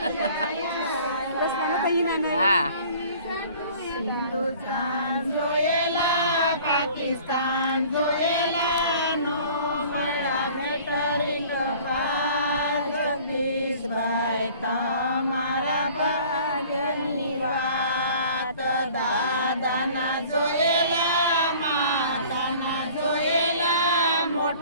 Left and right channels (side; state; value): both; inverted; correlation -0.49